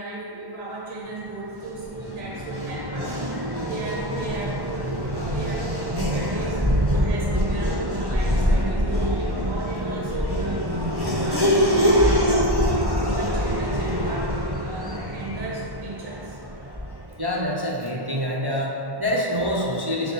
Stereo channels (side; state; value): left; late; 1.1 ms